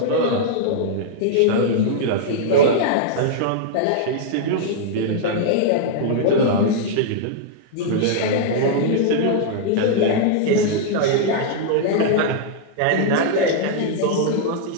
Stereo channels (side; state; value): both; different; correlation -0.02